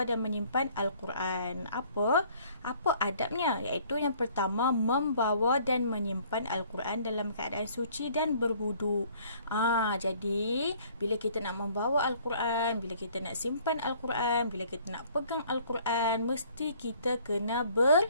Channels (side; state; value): both; inverted; correlation -0.57